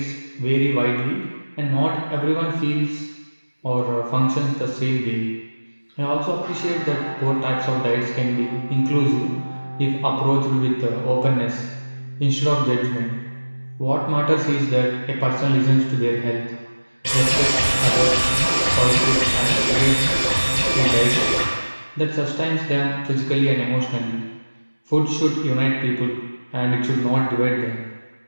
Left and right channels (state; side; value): inverted; both; correlation -1.00